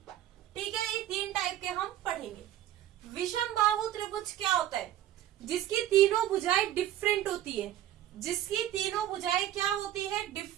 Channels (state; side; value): quieter; left; 12.5 dB